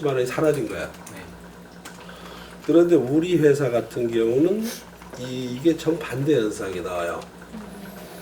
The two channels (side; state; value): both; identical; correlation 1.00